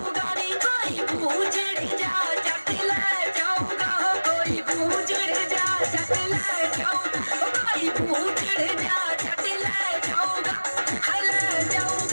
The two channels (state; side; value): inverted; both; correlation -1.00